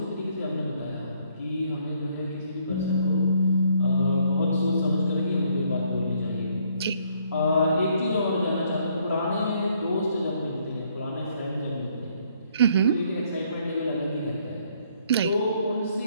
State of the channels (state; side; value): inverted; both; correlation -0.67